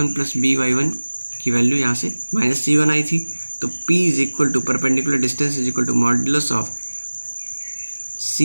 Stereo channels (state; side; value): inverted; both; correlation -1.00